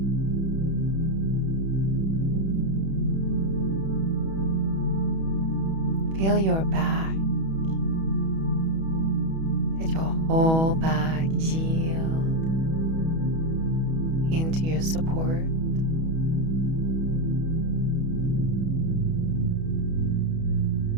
Feel your back. Let your whole back yield into your support.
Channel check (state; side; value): late; left; 31 ms